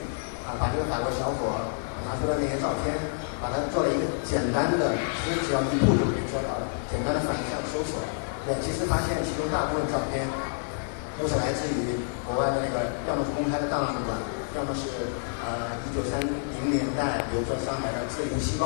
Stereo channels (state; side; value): silent; right; digital silence